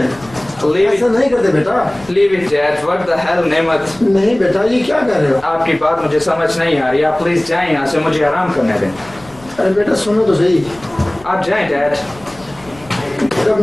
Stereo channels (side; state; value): left; noise; rumble, 23 dB below the sound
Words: ऐसा नहीं करते बेटा। Leave it dad, what the hell नेमत। नहीं बेटा ये क्या कर रहे हो? आपकी बात मुझे समझ नहीं आ रही, आप प्लीज जाएं यहाँ से, मुझे आराम करने दें। अरे बेटा सुनो तो सही। आप जाएं डैड। जब